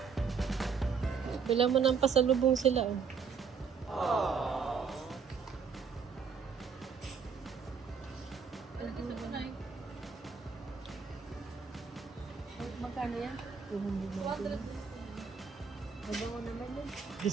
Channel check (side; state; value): left; quieter; 6.0 dB